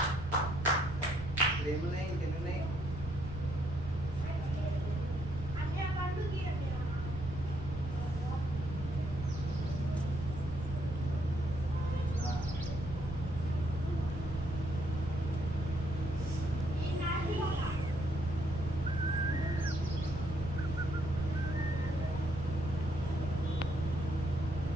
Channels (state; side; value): noise; right; rumble, 8 dB below the sound